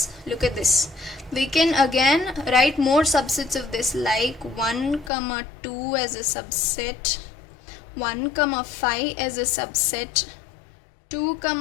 look at this. We can again write more subsets of this, like 1, 2 as a subset, 1, 5 as a subset, 2,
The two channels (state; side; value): drops out; right; at 5.1 s